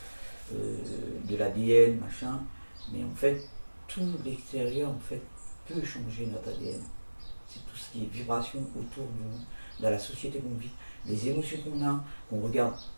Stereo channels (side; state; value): both; inverted; correlation -1.00